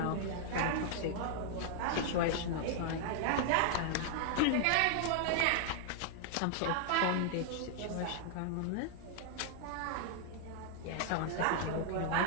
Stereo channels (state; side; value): different; both; correlation -0.01